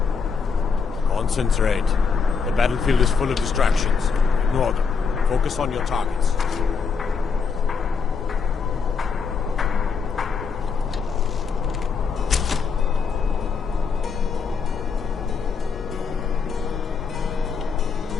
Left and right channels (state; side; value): quieter; right; 5.6 dB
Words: Concentrate. The battlefield is full of distractions. Ignore them. Focus on your targets.